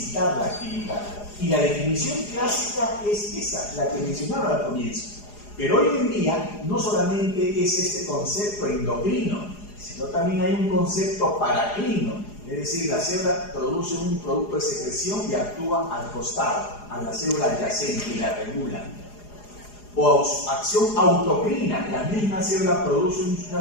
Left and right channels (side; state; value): right; late; 4.8 ms